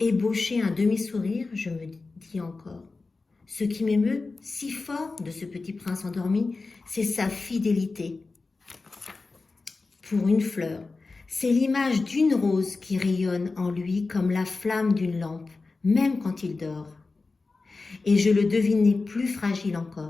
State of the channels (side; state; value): right; quieter; 3.8 dB